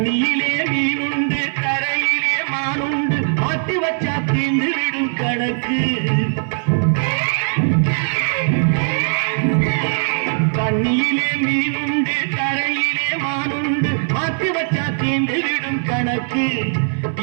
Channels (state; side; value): silent; left; digital silence